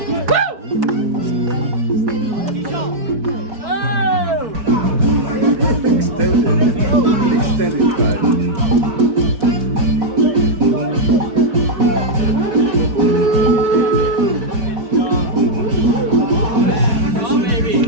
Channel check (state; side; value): late; left; 4.5 ms